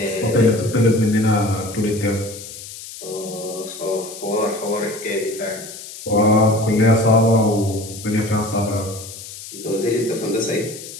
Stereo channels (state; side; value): noise; left; hiss, 13 dB below the sound